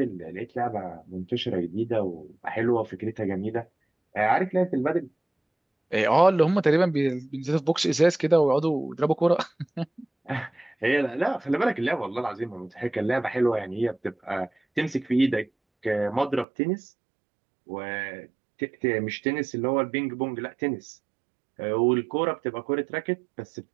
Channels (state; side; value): drops out; left; at 16.4 s